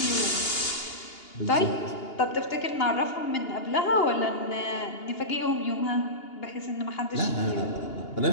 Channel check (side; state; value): right; late; 2.8 ms